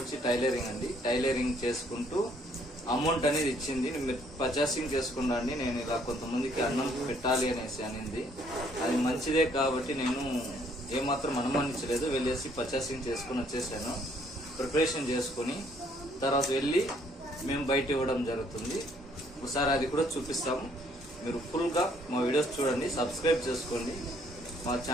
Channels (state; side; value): normal; both; correlation 0.65